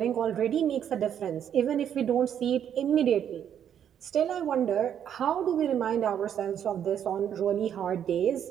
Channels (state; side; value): quieter; left; 9.2 dB